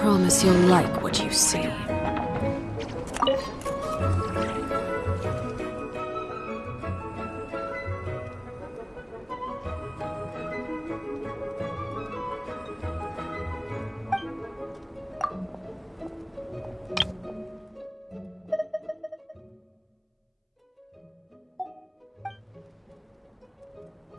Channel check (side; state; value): both; identical; correlation 1.00